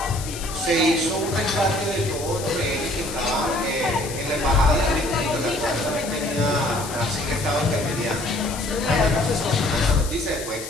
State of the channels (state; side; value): noise; left; hiss, 10 dB below the sound